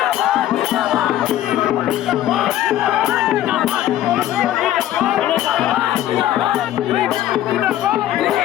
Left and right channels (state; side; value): quieter; right; 12.8 dB